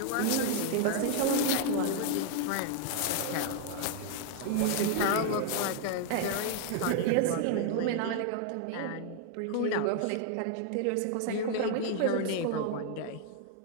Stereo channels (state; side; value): different; both; correlation 0.00